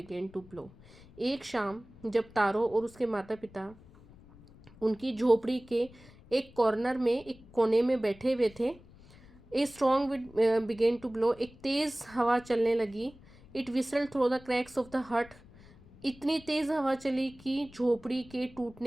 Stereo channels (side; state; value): left; noise; rumble, 23 dB below the sound